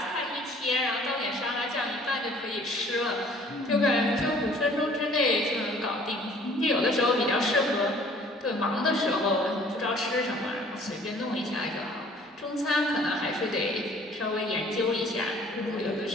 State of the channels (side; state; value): both; normal; correlation 0.54